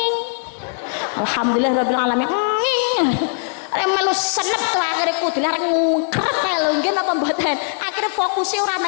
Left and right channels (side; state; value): right; silent; digital silence